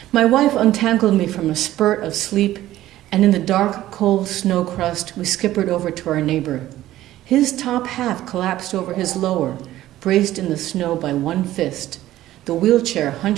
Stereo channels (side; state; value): left; quieter; 14.4 dB